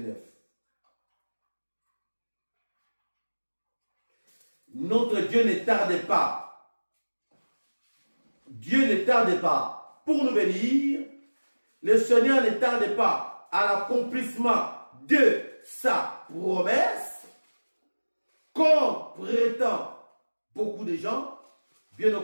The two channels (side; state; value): both; inverted; correlation -1.00